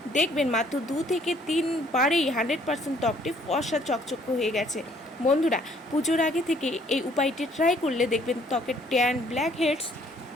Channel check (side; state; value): both; normal; correlation 0.62